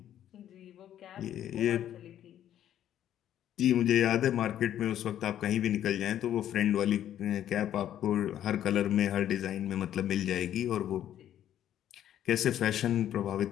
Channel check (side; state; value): right; quieter; 11.2 dB